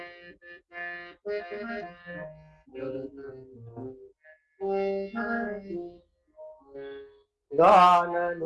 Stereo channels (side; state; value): both; identical; correlation 1.00